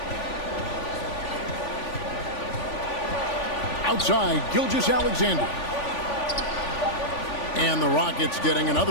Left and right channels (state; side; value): late; right; 3.5 ms